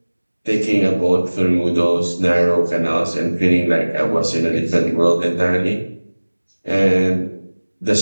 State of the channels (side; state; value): both; inverted; correlation -1.00